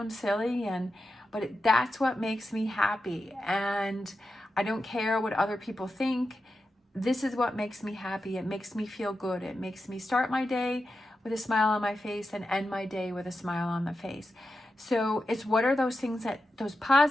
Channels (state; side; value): normal; both; correlation 0.90